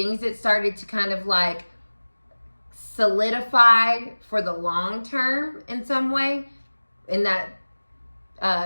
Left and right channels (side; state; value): both; inverted; correlation -1.00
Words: that started to kind of like solidify for the long term in some way, in that